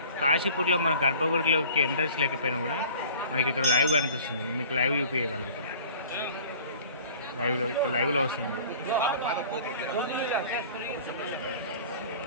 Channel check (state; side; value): inverted; both; correlation -0.47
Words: కాశీపురిలో మన గర్భగుడిలోకి ఎంట్రన్స్ లేకపోయినా కూడా మనకి ఇక్కడ లైవ్ కనిపిస్తుంది. మీకు లైవ్ చూపించగలుగుతాం. లైవ్లో వస్తుంది.